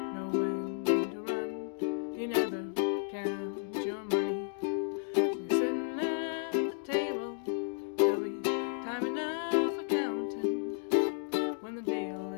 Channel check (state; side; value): silent; right; digital silence